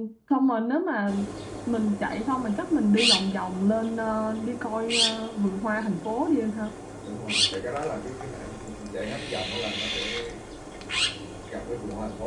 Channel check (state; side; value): identical; both; correlation 1.00